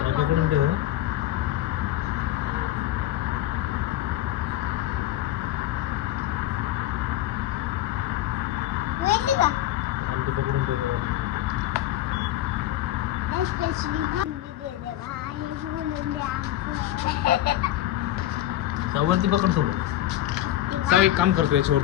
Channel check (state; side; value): quieter; right; 13.8 dB